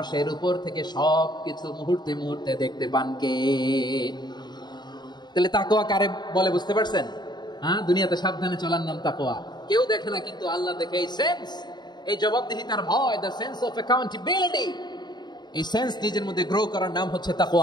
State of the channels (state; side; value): late; right; 0.21 ms